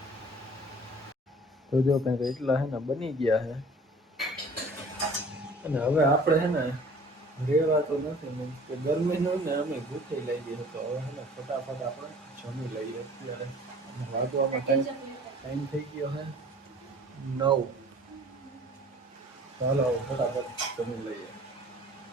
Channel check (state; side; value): normal; both; correlation 0.48